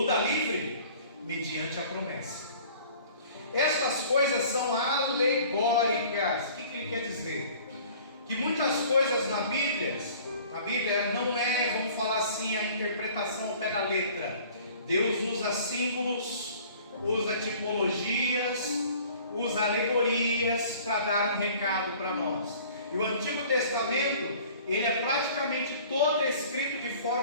da livre mediante a promessa. Estas coisas são alegóricas. O que ele quer dizer? Que muitas coisas na Bíblia não é, vamos falar assim, a interpretação ao pé da letra. Deus usa símbolos, usa tipologias, usa alegorias para dar um recado para nós. E o Antigo Testamento, ele é praticamente todo escrito de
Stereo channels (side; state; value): both; inverted; correlation -0.50